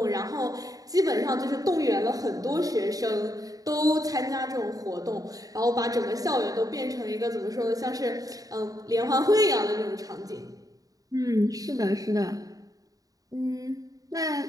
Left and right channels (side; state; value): left; late; 0.18 ms